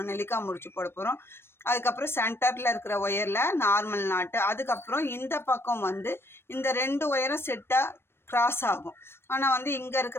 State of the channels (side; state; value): right; late; 0.12 ms